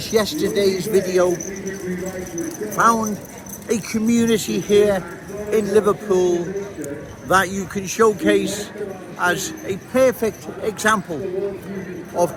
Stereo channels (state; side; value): identical; both; correlation 1.00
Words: yesterday's video, found a community here in Liverpool that you can showcase as a perfect example of